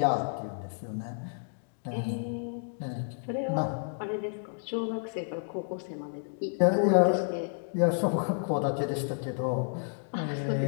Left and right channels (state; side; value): silent; right; digital silence